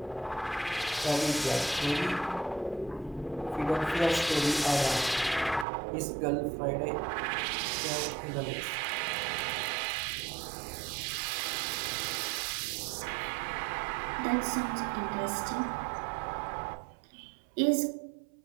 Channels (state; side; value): drops out; left; at 5.7 s